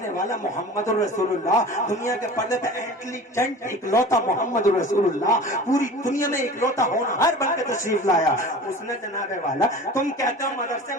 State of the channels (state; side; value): normal; both; correlation 0.38